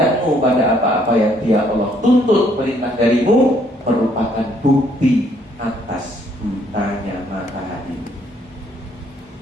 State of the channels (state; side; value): normal; both; correlation 0.67